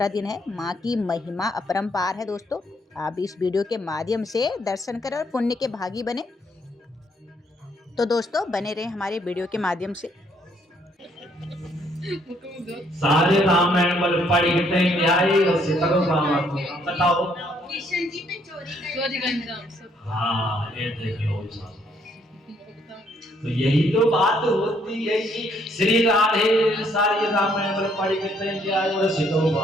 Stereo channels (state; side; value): normal; both; correlation 0.69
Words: दिन है। माँ की महिमा अपरंपार है दोस्तों। आप इस वीडियो के माध्यम से दर्शन करें और पुण्य के भागी बने। तो दोस्तों, बने रहे हमारे वीडियो के माध्यम से। सारे रामायण बल पढ़ी न्याय और सीताराम बाबा को बताओ। किशन जी पे चोरी का इंतजाम सब। हाँ, ये देखिए तो यही तो बात होती है कि श्री राधे सारी रामायण बल पढ़ी न्याय और सीताराम